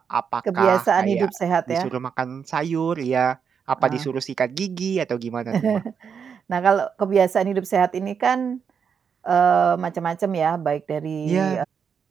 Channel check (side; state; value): left; quieter; 6.8 dB